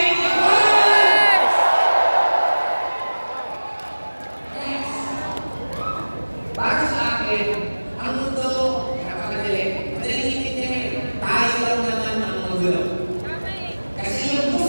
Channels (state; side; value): inverted; both; correlation -1.00